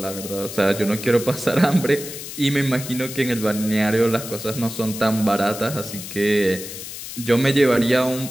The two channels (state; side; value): noise; left; hiss, 10 dB below the sound